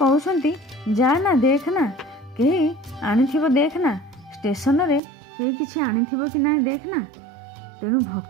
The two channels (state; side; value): drops out; left; at 5.0 s